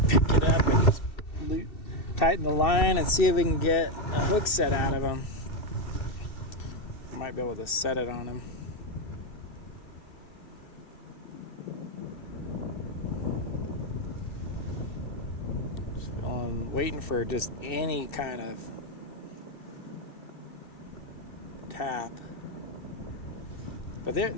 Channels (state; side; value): late; right; 2.7 ms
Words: pick it up and just tighten the line and see if we can get a hook set out of him. Might be able to set it on him. Just waiting for just any kind of tap. But